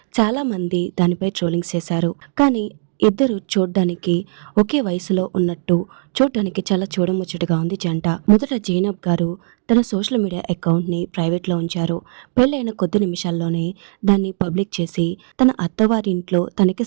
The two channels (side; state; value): left; silent; 66 dB below the other